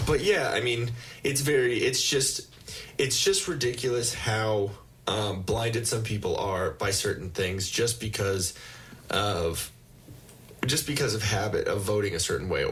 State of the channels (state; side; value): identical; both; correlation 1.00